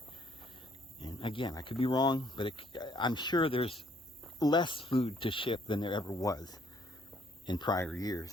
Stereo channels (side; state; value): both; normal; correlation 0.65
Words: And again, I could be wrong, but I'm sure there's less food to ship than there ever was in prior